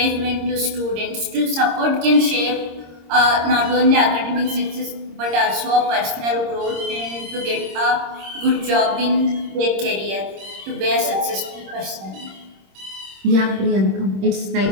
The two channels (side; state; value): left; late; 26 ms